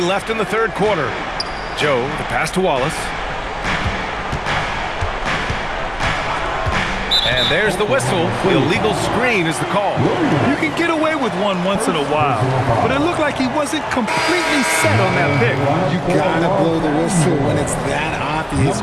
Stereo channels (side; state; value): both; identical; correlation 1.00